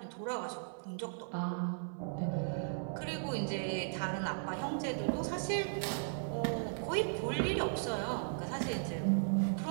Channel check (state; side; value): silent; left; 53 dB below the other